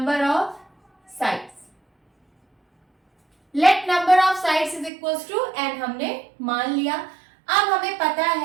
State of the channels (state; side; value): drops out; left; at 4.9 s